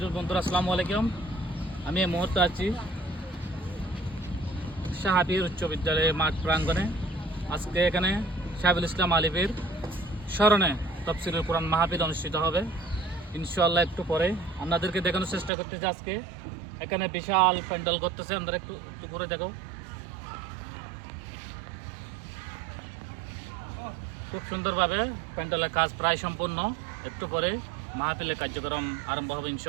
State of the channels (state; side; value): drops out; left; at 15.5 s